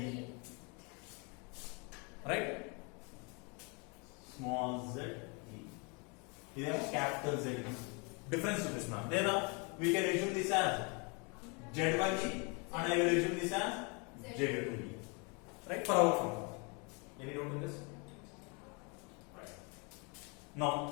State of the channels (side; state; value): right; quieter; 32.5 dB